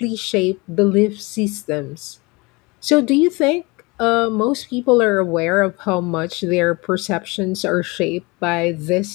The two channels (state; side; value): quieter; right; 25.6 dB